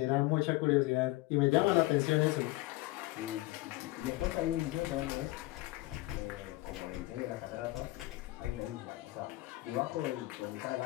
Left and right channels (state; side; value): quieter; right; 19.2 dB